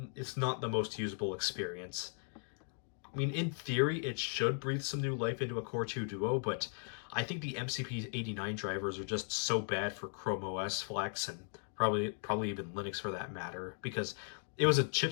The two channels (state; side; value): silent; right; 53 dB below the other